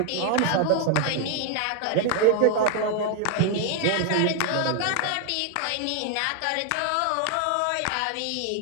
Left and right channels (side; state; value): both; different; correlation 0.00